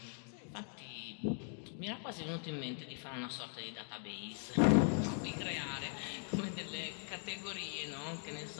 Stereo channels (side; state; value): right; silent; 51 dB below the other